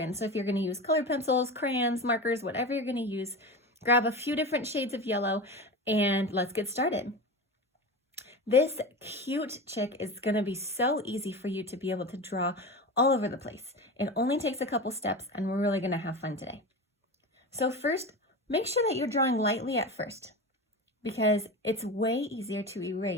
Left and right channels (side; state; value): both; normal; correlation 0.26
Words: So if you're going to use colored pencils, crayons, markers, whatever you're going to use, grab a few different shades of yellow and let's get started. This cute chick is going to be so easy for you to be able to draw all over the place. It only takes a couple steps and we're really going to have fun today. So first, make sure that you're drawing lightly at first because it's way easier to